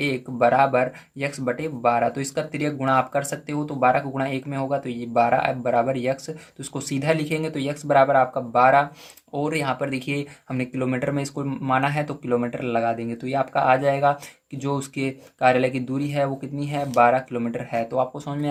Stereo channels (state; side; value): identical; both; correlation 1.00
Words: बराबर यक्स बटे 12। तो इसका तिर्यक गुणा आप कर सकते हो, तो 12 का गुणा 1 में होगा, तो ये 12 बराबर यक्स, तो इसको सीधा लिखेंगे, तो यक्स बराबर आपका 12। और यहाँ पर देखिए हमने किलोमीटर में इसको माना है, तो किलोमीटर लगा देंगे, तो ये आपका आ जाएगा कि जो उसके कार्यालय की दूरी है वो कितनी है, 12 किलोमीटर है। तो आपको समझ में